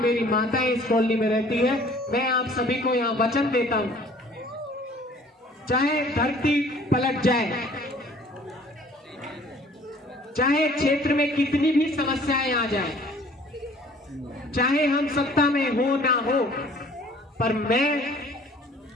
माताएं इस कॉलोनी में रहती है। मैं आप सभी को यहाँ वचन देता हूँ, चाहे धरती पलट जाए, चाहे क्षेत्र में कितनी भी समस्याएं आ जाए, चाहे हम सत्ता में हो ना हो, पर मैं,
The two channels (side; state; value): both; normal; correlation 0.53